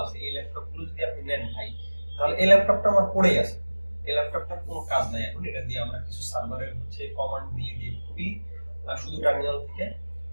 আছে, এই ল্যাপটপ গুলো যদি আপনি নেন ভাই, তাহলে এই ল্যাপটপটা আমার পড়েই আছে, এই ল্যাপটপটার কোনো কাজ নাই এখন। এটা দিয়ে আমরা কিছু সার্ভারের হচ্ছে কমান্ড দিয়ে দিয়ে খুবই শুধু টার্মিনাল থেকে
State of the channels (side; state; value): both; inverted; correlation -1.00